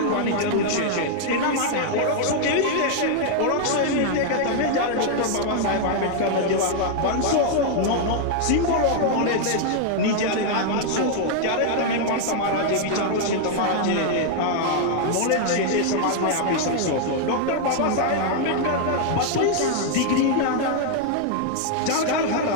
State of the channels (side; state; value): both; different; correlation 0.00